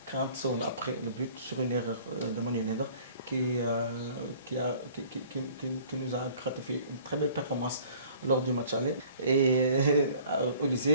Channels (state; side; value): inverted; both; correlation -0.52